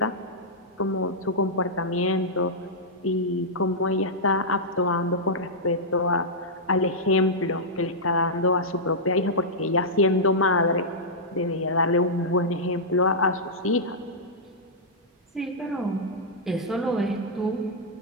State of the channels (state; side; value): normal; both; correlation -0.09